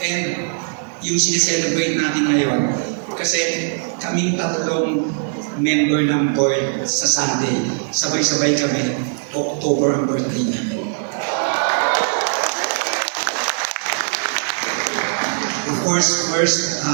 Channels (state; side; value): silent; left; digital silence